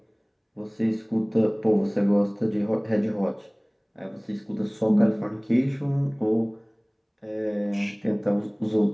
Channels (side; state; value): both; identical; correlation 1.00